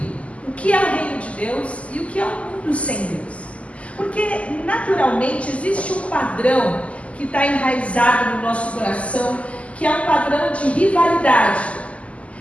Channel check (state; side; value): late; right; 0.064 ms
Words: o que é o reino de Deus e o que é o mundo sem Deus. Porque naturalmente existe um padrão que está enraizado no nosso coração, que é um padrão de rivalidade.